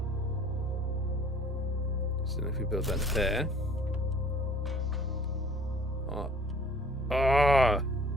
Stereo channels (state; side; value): normal; both; correlation 0.53